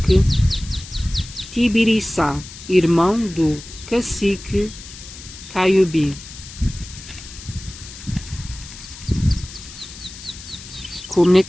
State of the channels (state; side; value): noise; left; hiss, 15 dB below the sound